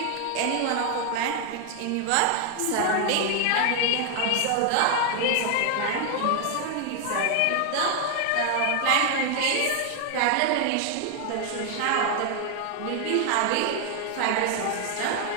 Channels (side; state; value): both; different; correlation 0.00